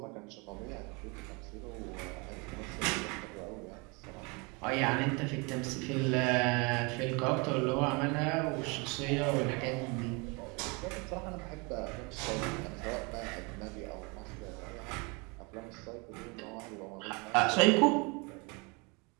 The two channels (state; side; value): quieter; left; 29.6 dB